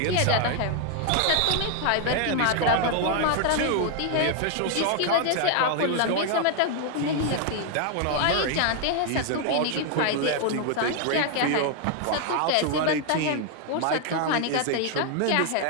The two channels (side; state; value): both; different; correlation 0.00